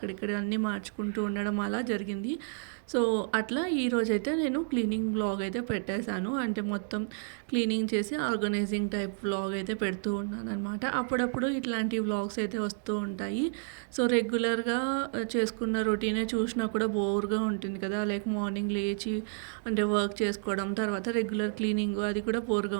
అన్నీ మార్చుకుంటూ ఉండడం అలా జరిగింది. సో, అట్లా ఈరోజైతే నేను క్లీనింగ్ వ్లాగ్ అయితే పెట్టేశాను. అంటే మొత్తం క్లీనింగ్ చేసి ఆర్గనైజింగ్ టైప్ వ్లాగ్ అయితే పెడుతూ ఉన్నాననమాట. అప్పుడప్పుడు ఇట్లాంటి వ్లాగ్స్ అయితే వస్తూ ఉంటాయి. సో, రెగ్యులర్‌గా చేసుకున్న రొటీనే చూసినా కూడా బోర్‌గా ఉంటుంది కదా! లైక్ మార్నింగ్ లేచి అంటే వర్క్ చేసుకోవడం, తర్వాత రెగ్యులర్ క్లీనింగ్ అది కూడా బోర్‌గా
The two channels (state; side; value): silent; left; 57 dB below the other